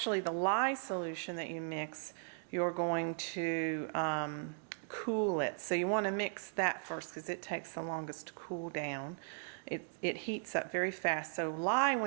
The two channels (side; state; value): left; silent; digital silence